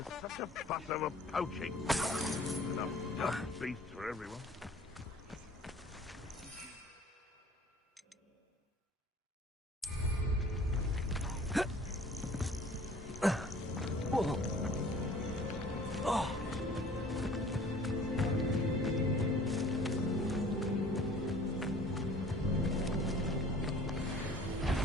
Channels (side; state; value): both; normal; correlation 0.49